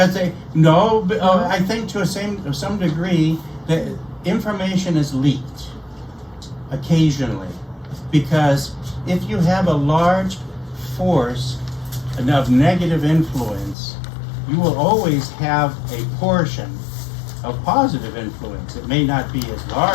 I think to some degree that information is leaked occasionally. Because if you have a large force of negative influence, you will always have a portion of positive influence. It may not be as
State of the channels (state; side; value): drops out; right; at 13.8 s